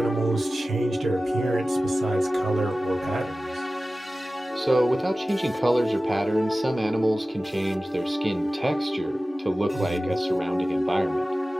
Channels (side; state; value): both; normal; correlation 0.96